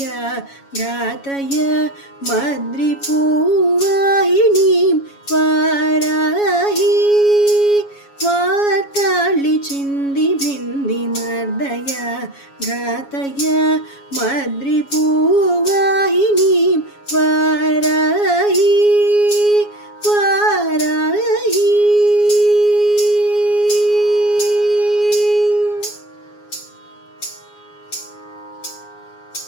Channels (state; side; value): late; right; 7.2 ms